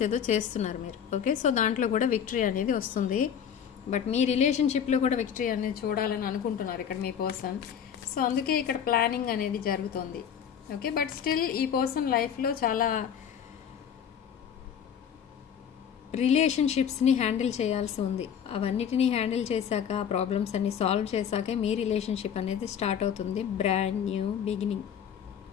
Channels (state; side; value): quieter; right; 8.3 dB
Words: ఏదో చేస్తున్నారు మీరు. ఓకే, సో దాంట్లో కూడా విక్టరీ అనేది వస్తుంది. బట్ మీ రిలేషన్షిప్లో కూడా విక్టరీ అనేది చూడాలని అనుకుంటున్నారు ఇక్కడ మీ పర్సన్. సో అందుకే ఇక్కడ ప్లానింగ్ అనేది జరుగుతుంది. ఓకే, బట్ స్టిల్ ఈ పర్సన్ లైఫ్లో చాలా రిలేషన్షిప్స్ని హ్యాండిల్ చేయాల్సి ఉంది. అవన్నిటినీ హ్యాండిల్ చేశాక, ప్రాబ్లమ్స్ అన్ని సాల్వ్ చేశాకే మీ రిలేషన్షిప్ అనేది స్టార్ట్ అవుతుంది, brand new beginning.